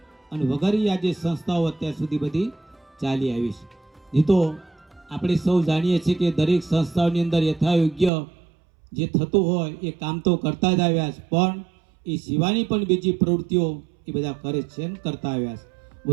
અને વગેરે આજે સંસ્થાઓ અત્યાર સુધી બધી ચાલી આવી છે. નહીં તો આપણે સૌ જાણીએ છીએ કે દરેક સંસ્થાઓની અંદર યથાયોગ્ય જે થતું હોય એ કામ તો કરતા જ આવ્યા છે, પણ એ સિવાયની પણ બીજી પ્રવૃત્તિઓ એ બધા કરે છે ને કરતા આવ્યા છે.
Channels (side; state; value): left; drops out; at 8.1 s